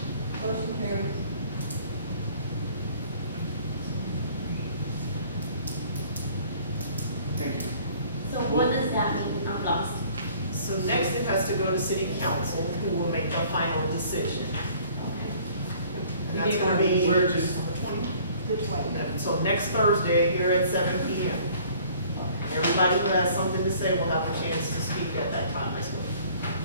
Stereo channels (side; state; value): both; inverted; correlation -0.54